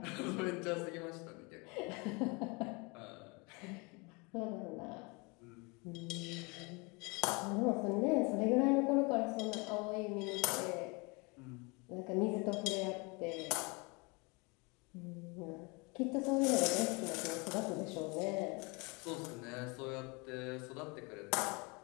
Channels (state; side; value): quieter; right; 29.0 dB